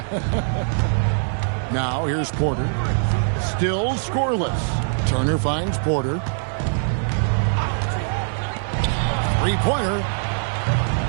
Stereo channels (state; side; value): silent; left; digital silence